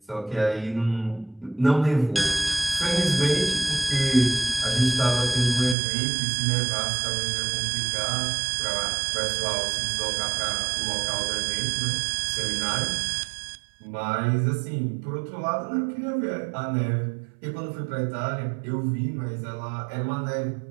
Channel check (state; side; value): drops out; left; at 5.8 s